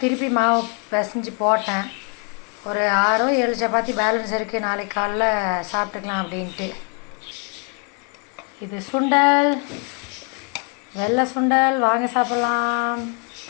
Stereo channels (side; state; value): right; quieter; 36.9 dB